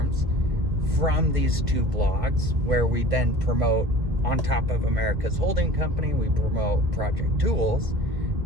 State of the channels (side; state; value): left; late; 1.2 ms